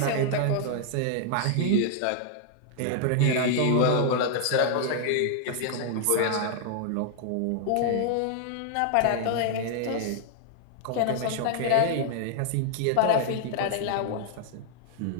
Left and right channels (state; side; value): different; both; correlation -0.01